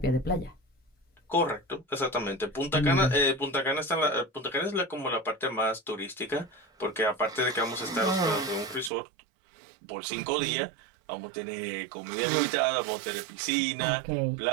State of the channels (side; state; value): left; drops out; at 8.9 s